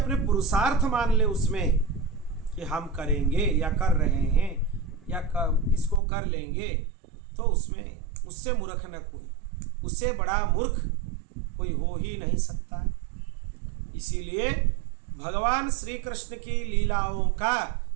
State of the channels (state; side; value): drops out; left; at 6.0 s